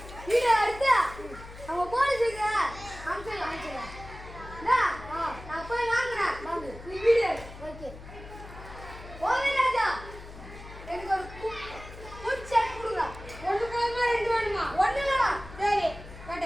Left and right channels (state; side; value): noise; left; hum, 15 dB below the sound